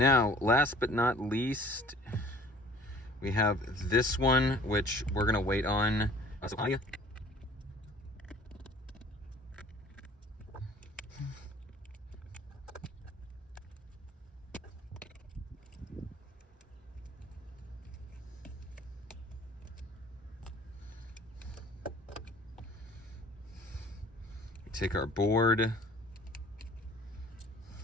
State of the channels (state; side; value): normal; both; correlation 0.50